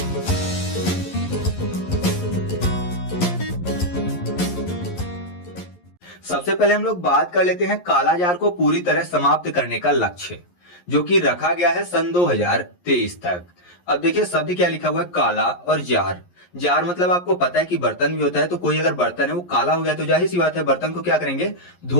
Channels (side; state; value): right; late; 11 ms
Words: सबसे पहले हम लोग बात कर लेते हैं कालाजार को पूरी तरह समाप्त करने का लक्ष्य, जो कि रखा गया है सन 2023 तक। अब देखिए शब्द क्या लिखा हुआ है, काला और जार। जार मतलब आपको पता है कि बर्तन भी होता है, तो कोई अगर बर्तन है वो काला हो गया तो जाहिर सी बात है बर्तन को क्या करेंगे,